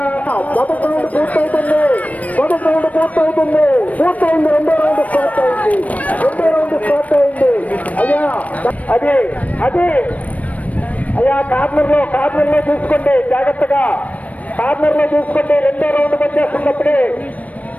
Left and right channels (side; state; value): right; late; 0.070 ms